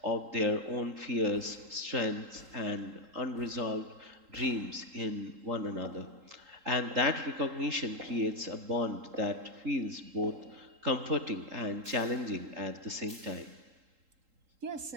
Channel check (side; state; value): left; late; 3.8 ms